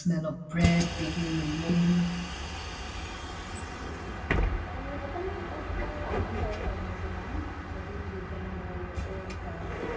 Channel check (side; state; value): both; identical; correlation 1.00